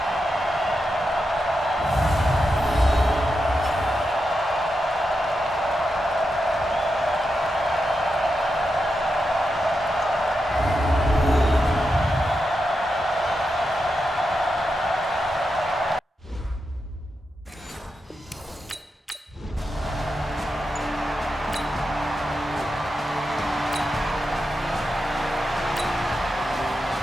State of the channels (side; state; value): both; normal; correlation 0.87